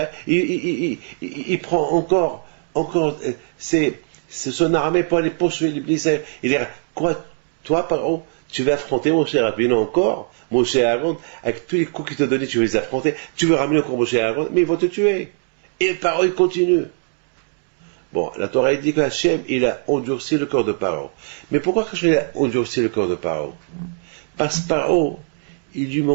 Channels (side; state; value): left; silent; digital silence